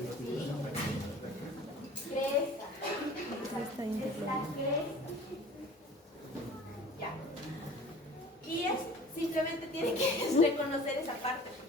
Cresta. Cresta interlóbulo. Cresta. Ya. Y es, simplemente tienen que reconocer esa parte,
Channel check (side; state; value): both; normal; correlation 0.44